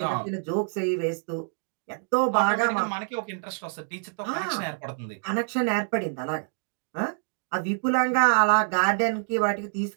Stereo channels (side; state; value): left; silent; digital silence